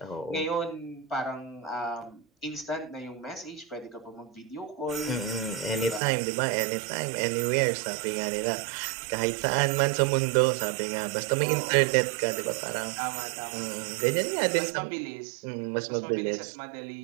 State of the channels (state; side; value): drops out; left; at 6.0 s